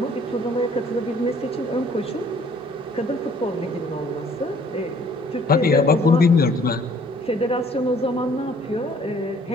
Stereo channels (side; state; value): both; normal; correlation 0.58